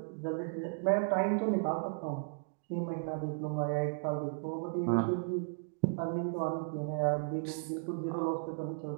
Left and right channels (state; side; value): silent; left; digital silence